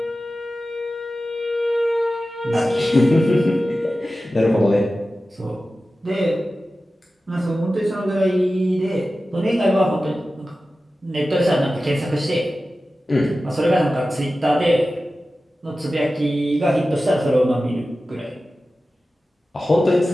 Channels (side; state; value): both; normal; correlation 0.94